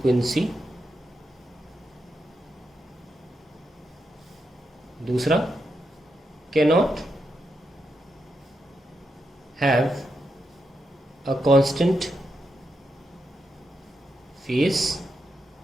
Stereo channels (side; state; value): both; normal; correlation 0.84